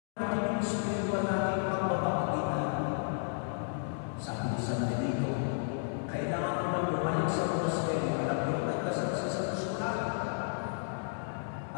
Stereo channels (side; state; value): right; silent; digital silence